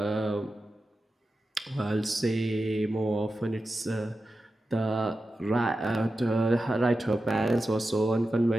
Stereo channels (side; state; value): both; normal; correlation 0.92